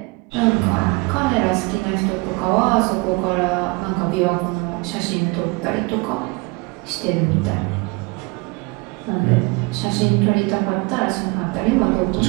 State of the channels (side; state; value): left; quieter; 27.1 dB